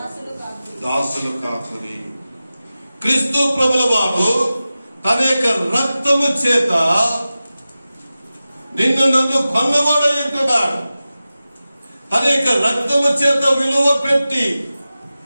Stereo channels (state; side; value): inverted; both; correlation -0.95